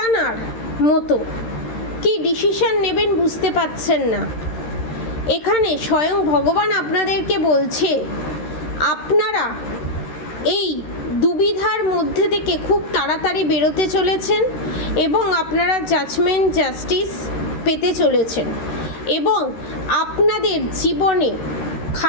মতো, কি ডিসিশন নেবেন বুঝতে পারছেন না। এখানে স্বয়ং ভগবান আপনাদেরকে বলছে আপনারা এই দুবিধার মধ্যে থেকে খুব তাড়াতাড়ি বেরোতে চলেছেন এবং আপনারা জাস্টিস পেতে চলেছেন এবং আপনাদের জীবনে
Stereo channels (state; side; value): late; right; 13 ms